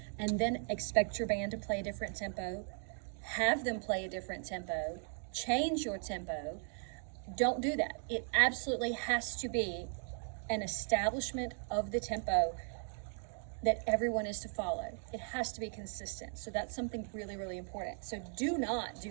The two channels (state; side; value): silent; left; 53 dB below the other